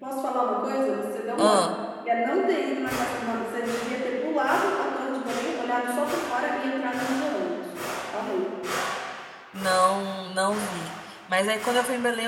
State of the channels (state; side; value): identical; both; correlation 1.00